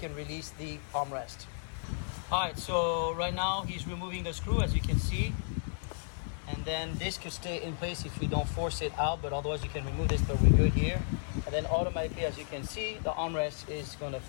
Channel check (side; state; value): right; silent; digital silence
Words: release the armrest. All right, so right now he's removing the screw, as you can see. And then this could stay in place if you don't force it out, but otherwise you can remove this, but we're good here. And then automatically, as you can see, the armrest is going to